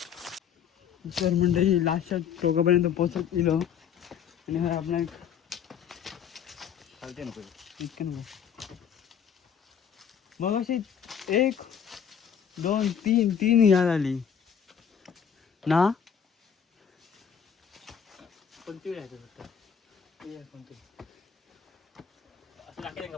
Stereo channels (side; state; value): right; quieter; 7.8 dB